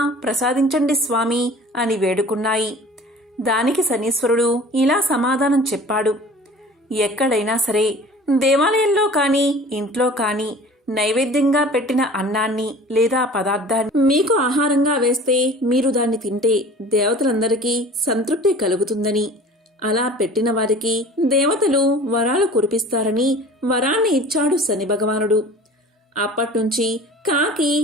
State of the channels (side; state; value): both; normal; correlation 0.44